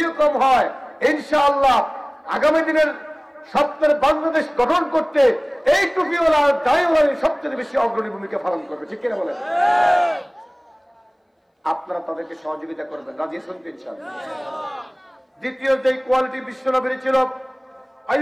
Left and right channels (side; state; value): both; identical; correlation 1.00